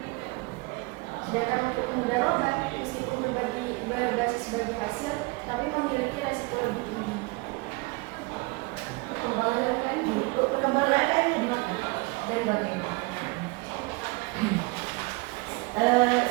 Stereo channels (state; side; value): quieter; left; 26.2 dB